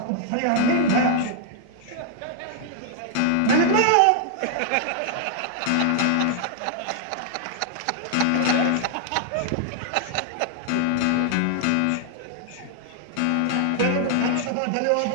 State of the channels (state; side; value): different; both; correlation 0.00